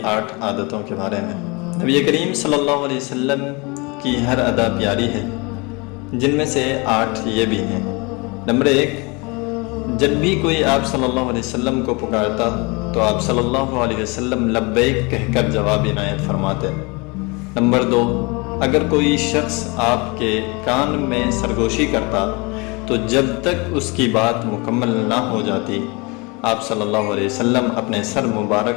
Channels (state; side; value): quieter; right; 28.1 dB